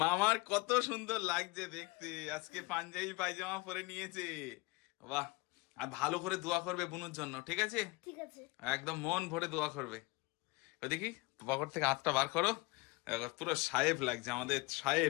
মামার কত সুন্দর লাগছে দেখতে, আজকে পাঞ্জাবি পায়জামা পরে নিয়েছে। বাহ, আর ভালো করে দোয়া করবে বুনুর জন্য, ঠিক আছে? ঠিক আছে। একদম মন ভরে দোয়া করবে। ওই দেখি পকেট থেকে হাতটা বার করো, পুরো সাহেব লাগছে আমাদের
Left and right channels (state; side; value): quieter; right; 24.2 dB